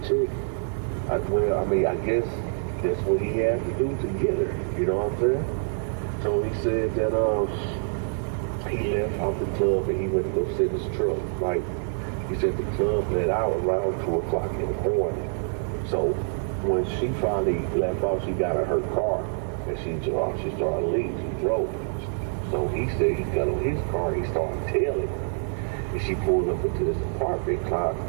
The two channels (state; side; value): silent; left; 61 dB below the other